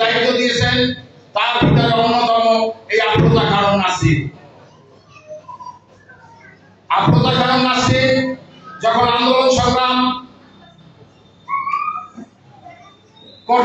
দায়িত্ব দিয়েছেন। তার ভিতরে অন্যতম এই আফরোজা খানম নাসরিন। আফরোজা খানম নাসরিন যখন আন্দোলন সংগ্রাম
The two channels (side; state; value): both; identical; correlation 1.00